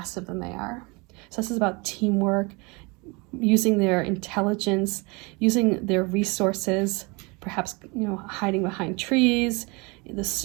than they are. So this is about teamwork, using their intelligence, using their resources, perhaps hiding behind trees, the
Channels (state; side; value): quieter; left; 27.9 dB